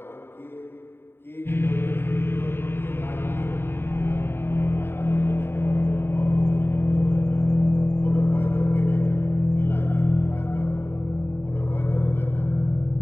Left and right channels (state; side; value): late; right; 0.11 ms